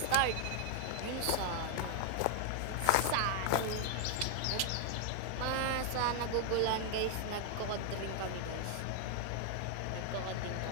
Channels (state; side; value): different; both; correlation 0.00